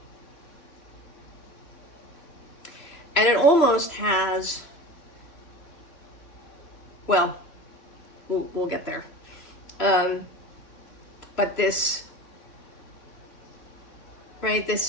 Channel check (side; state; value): right; late; 3.0 ms